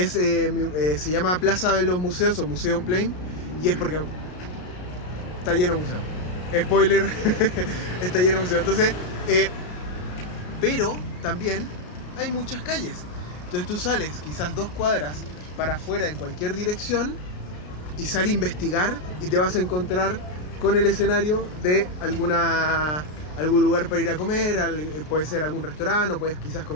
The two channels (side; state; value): right; late; 33 ms